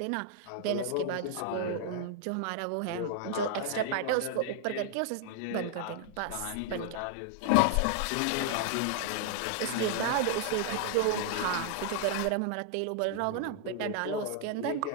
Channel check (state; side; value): different; both; correlation 0.00